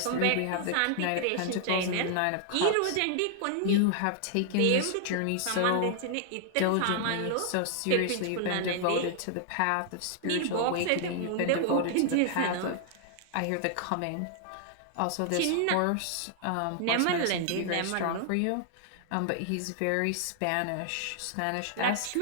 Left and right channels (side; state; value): both; different; correlation 0.00